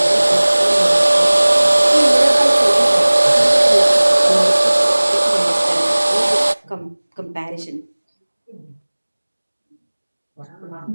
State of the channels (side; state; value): both; inverted; correlation -1.00